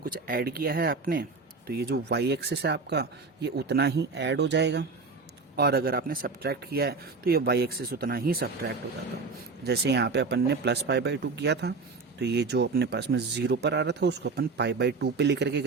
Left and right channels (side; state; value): left; quieter; 4.2 dB